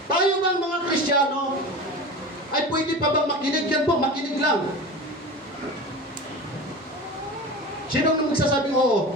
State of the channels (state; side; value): normal; both; correlation 0.31